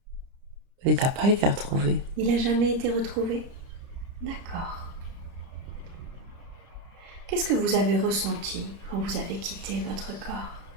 Il n'a pas été retrouvé. Il n'a jamais été retrouvé? D'accord. Qu'est-ce que vous avez ressenti quand vous avez quitté votre corps?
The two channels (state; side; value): late; left; 30 ms